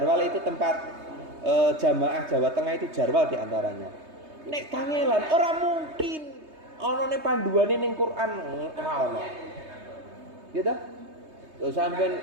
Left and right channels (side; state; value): left; late; 3.2 ms